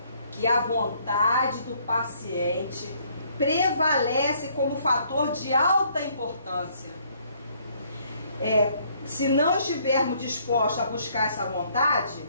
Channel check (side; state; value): both; inverted; correlation -0.65